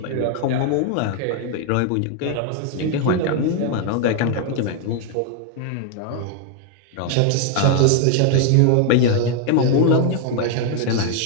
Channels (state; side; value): different; both; correlation 0.00